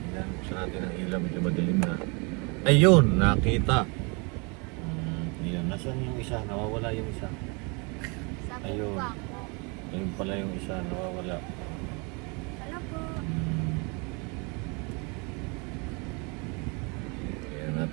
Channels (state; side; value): quieter; left; 31.5 dB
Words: Ayan, buksan natin ang ilaw. Medyo madilim na. Ayun, nakita. Ayan, nasaan yung isa? Nawawala yung isa. Ayun. Ayun pala yung isa, nawawala. Hello po. Ayan,